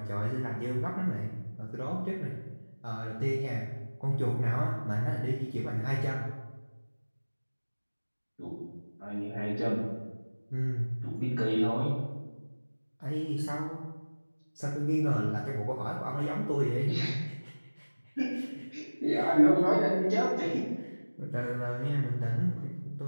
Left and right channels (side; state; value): both; inverted; correlation -1.00